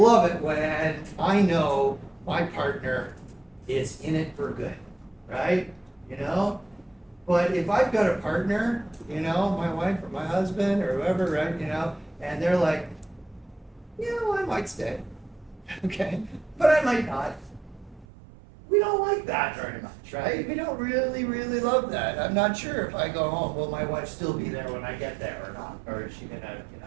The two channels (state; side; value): drops out; left; at 18.1 s